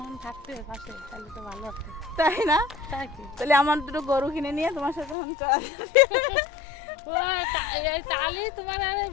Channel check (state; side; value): drops out; right; at 5.2 s